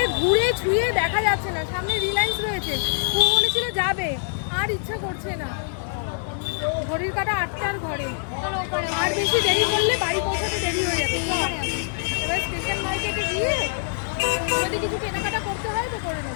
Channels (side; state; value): right; silent; digital silence